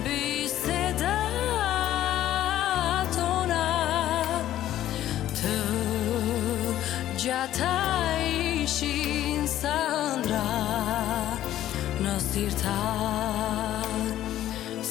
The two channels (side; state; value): right; quieter; 12.8 dB